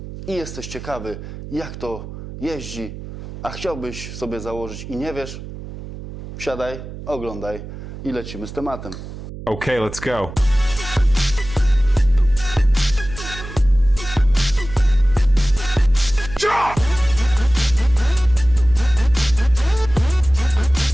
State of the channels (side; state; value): right; noise; hum, 12 dB below the sound